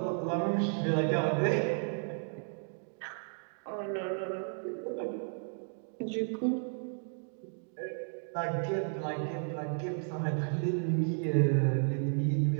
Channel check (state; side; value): silent; left; 56 dB below the other